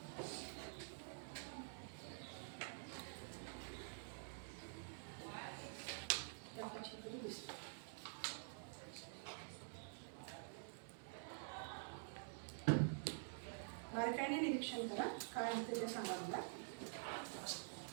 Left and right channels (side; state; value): left; silent; digital silence